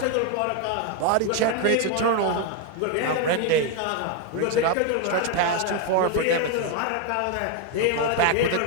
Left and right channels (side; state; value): both; different; correlation 0.01